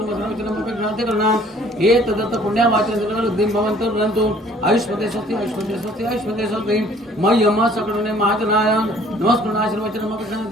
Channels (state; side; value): normal; both; correlation 0.56